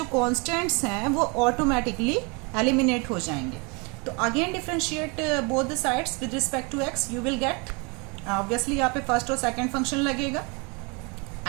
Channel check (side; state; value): left; quieter; 30.9 dB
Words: कांस्टेंट्स हैं वो ऑटोमेटिकली एलिमिनेट हो जाएंगे. तो again differentiate both the sides with respect to x, you will get obviously यहाँ पे फर्स्ट और सेकंड फंक्शन लगेगा